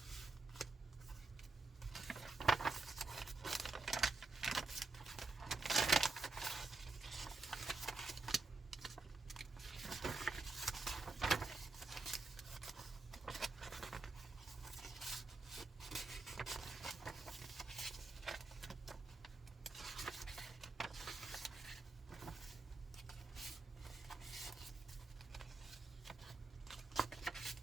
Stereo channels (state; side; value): quieter; left; 3.7 dB